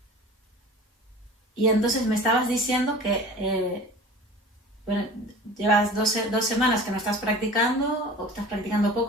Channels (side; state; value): both; normal; correlation 0.40